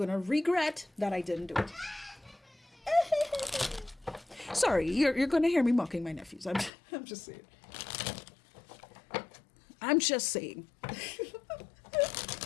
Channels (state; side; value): drops out; right; at 6.7 s